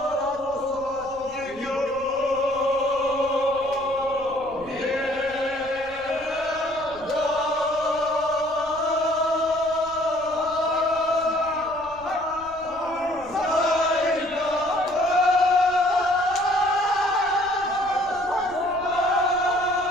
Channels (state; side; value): noise; left; rumble, 22 dB below the sound